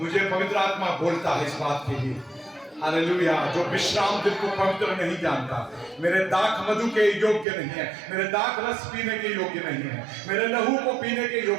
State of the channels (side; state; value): left; drops out; at 7.5 s